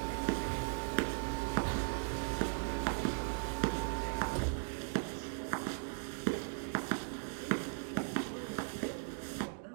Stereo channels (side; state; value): left; silent; digital silence